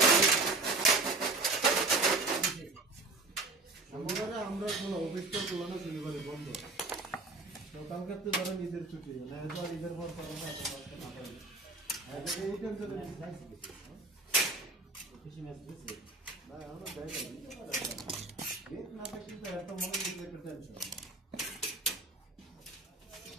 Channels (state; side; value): quieter; left; 3.5 dB